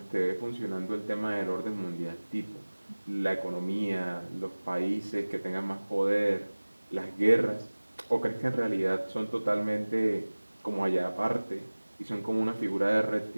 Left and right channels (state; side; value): inverted; both; correlation -1.00